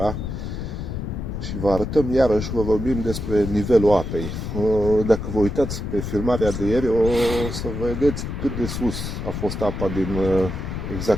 și vă arătăm iarăși, vă vorbim despre nivelul apei. Dacă vă uitați pe filmarea de ieri, o să vedeți cât de sus a fost apa din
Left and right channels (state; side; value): noise; left; rumble, 5 dB below the sound